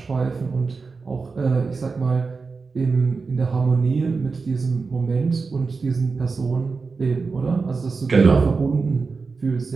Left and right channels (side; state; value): left; quieter; 4.5 dB